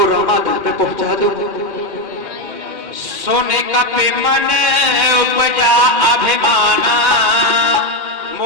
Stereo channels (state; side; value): late; left; 2.2 ms